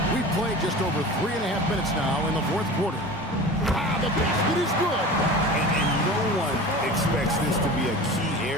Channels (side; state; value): both; normal; correlation 0.35